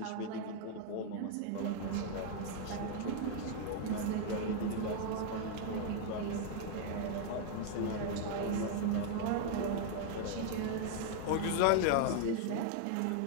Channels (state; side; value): different; both; correlation 0.00